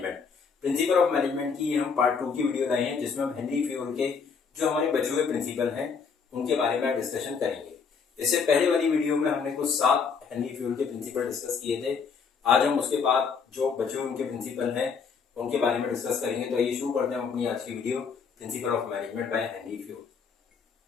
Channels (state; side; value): quieter; right; 5.7 dB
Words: Principle of management की हम पार्ट 2 की वीडियो लाए हैं, जिसमें हम हेनरी फ्यूल के जो हमारे बचे हुए प्रिंसिपल हैं उनके बारे में डिस्कशन करेंगे। इससे पहले वाली वीडियो में हमने कुछ 7 हेनरी फ्यूल के प्रिंसिपल डिस्कस किए थे। आज हम उसके बाद जो बचे हुए उनके प्रिंसिपल हैं उनके बारे में डिस्कस करेंगे। तो आइए शुरू करते हैं अपनी आज की video, principle of management by Henry fuel.